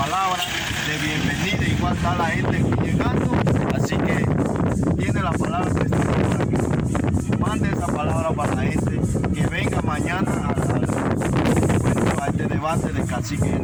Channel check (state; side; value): identical; both; correlation 1.00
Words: de bienvenida. Igual está la gente aquí llegando, así que tiene la palabra presidente. Mande esa palabra para la gente que venga mañana a este debate de cacique